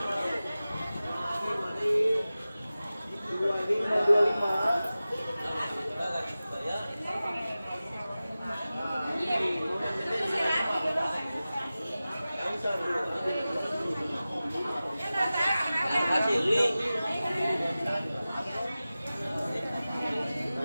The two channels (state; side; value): inverted; both; correlation -0.96